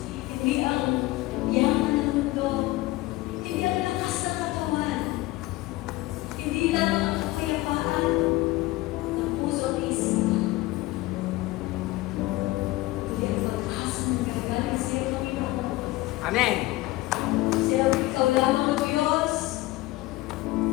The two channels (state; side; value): quieter; right; 18.9 dB